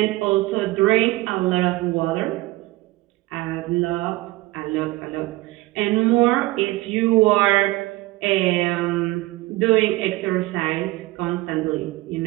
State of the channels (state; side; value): quieter; left; 19.4 dB